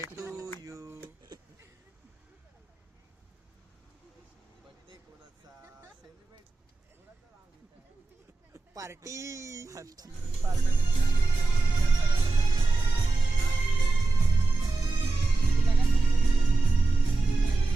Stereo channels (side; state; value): left; quieter; 3.4 dB